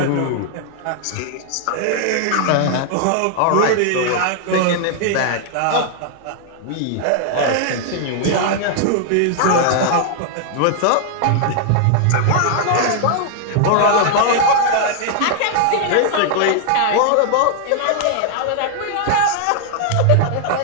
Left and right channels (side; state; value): both; different; correlation 0.00